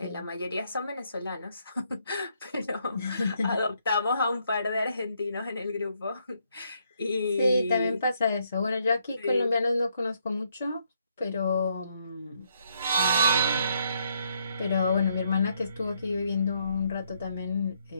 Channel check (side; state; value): both; inverted; correlation -0.73